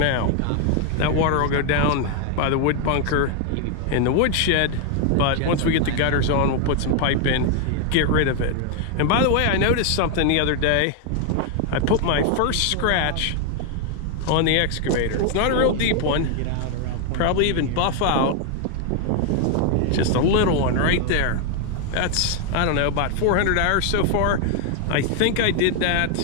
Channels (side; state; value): both; different; correlation 0.01